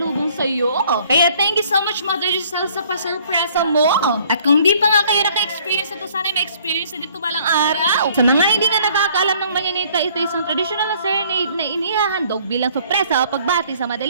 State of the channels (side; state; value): both; inverted; correlation -0.59